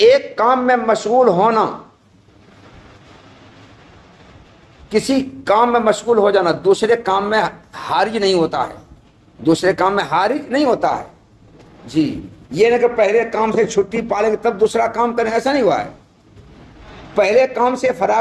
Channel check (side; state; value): both; identical; correlation 1.00